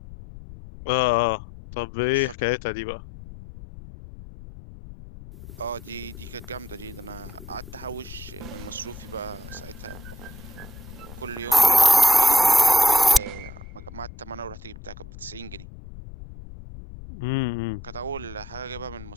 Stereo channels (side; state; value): left; noise; rumble, 15 dB below the sound